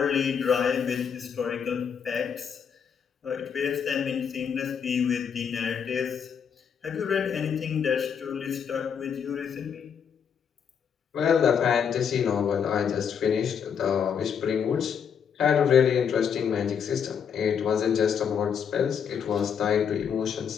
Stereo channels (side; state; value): right; quieter; 7.4 dB